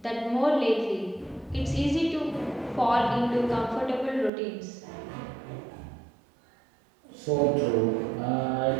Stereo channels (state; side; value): drops out; left; at 4.3 s